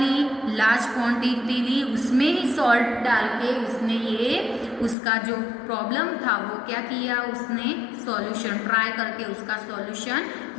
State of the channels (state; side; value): drops out; right; at 5.0 s